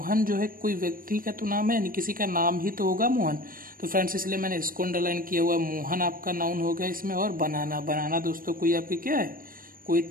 जो है कोई व्यक्ति का तो नाम है, यानी किसी का नाम ही तो होगा मोहन। तो फ्रेंड्स इसलिए मैंने इसको अंडरलाइन किया हुआ है। मोहन आपका नाउन हो गया इसमें। और बनाना, बनाना दोस्तों कोई आपकी क्या है, कोई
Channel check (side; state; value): left; late; 0.41 ms